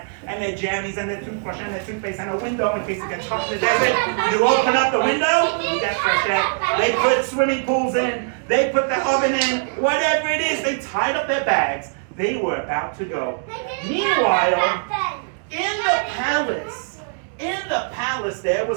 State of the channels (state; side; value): silent; left; digital silence